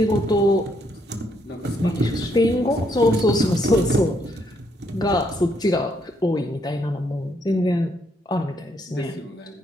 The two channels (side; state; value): both; normal; correlation 0.73